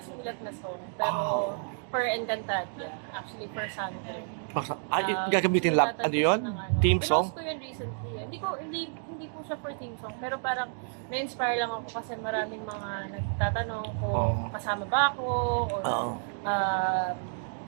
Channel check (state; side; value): silent; left; 58 dB below the other